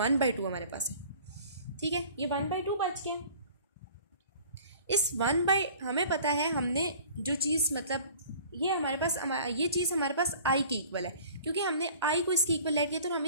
हमारे पास है। ठीक है, ये 1/2 बच गया। इस हमें पता है, हमने जो चीज़ मतलब ये हमारे पास ये चीज़ हमारे पास आई के इक्वल है, क्योंकि हमने आई को इसके इक्वल लेट किया तो हम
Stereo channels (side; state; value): both; inverted; correlation -0.47